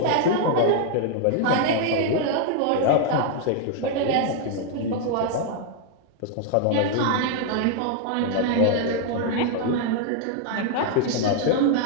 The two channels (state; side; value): different; both; correlation 0.00